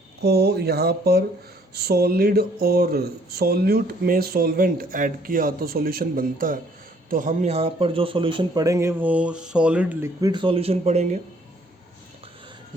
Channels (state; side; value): normal; both; correlation 0.63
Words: यहाँ पर सॉलिड और सॉल्यूट में सॉल्वेंट ऐड किया तो सॉल्यूशन बनता है। तो हम यहाँ पर जो सॉल्यूशन पढ़ेंगे वो सॉलिड लिक्विड सॉल्यूशन पढ़ेंगे,